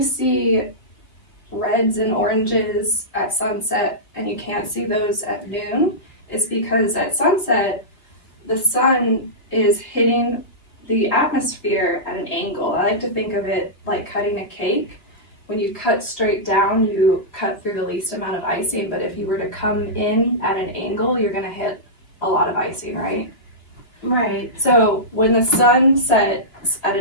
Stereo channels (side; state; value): right; late; 2.8 ms